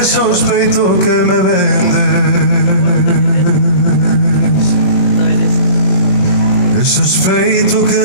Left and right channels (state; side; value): late; right; 21 ms